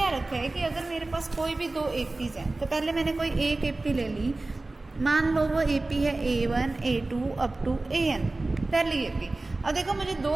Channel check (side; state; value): left; quieter; 3.1 dB